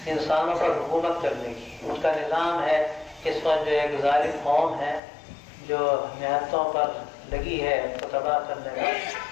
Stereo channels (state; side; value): drops out; right; at 5.0 s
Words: انسانوں پر حکومت کرنے کی. اس کا نظام ہے اس وقت جو ایک ظالم قوم ہے جو نہتوں پر لگی ہے اس کو تباہ کرنے کا.